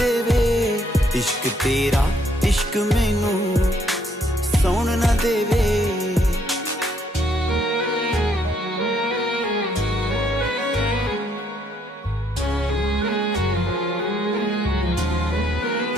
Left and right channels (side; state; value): both; normal; correlation 0.69